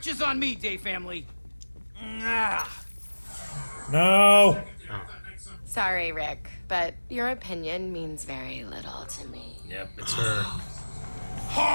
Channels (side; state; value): both; inverted; correlation -1.00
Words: is on me, day family. Ah. No. Sorry, Rick, but your opinion means very little to me. Yep, it's her.